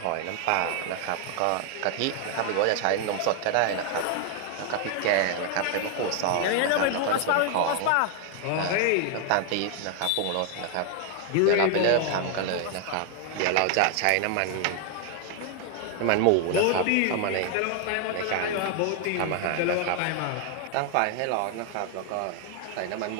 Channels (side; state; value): both; different; correlation 0.00